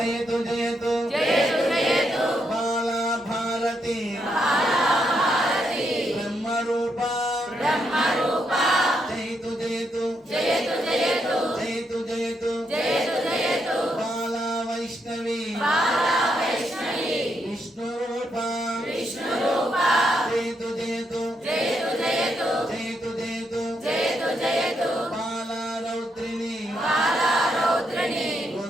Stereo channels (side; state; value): both; normal; correlation 0.79